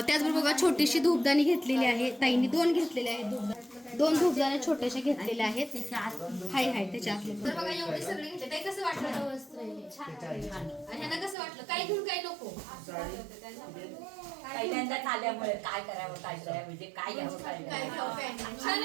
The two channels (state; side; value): drops out; left; at 11.4 s